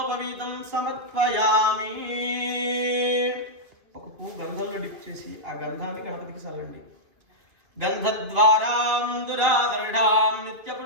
సమర్పయామి. ఒక పువ్వు గంధంలో డిప్ చేసి ఆ గంధాన్ని గణపతికి చల్లండి. గంధద్వారాం దురాదర్ఢాం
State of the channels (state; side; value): late; left; 2.3 ms